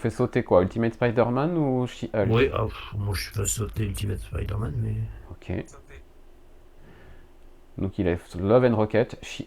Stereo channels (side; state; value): both; identical; correlation 1.00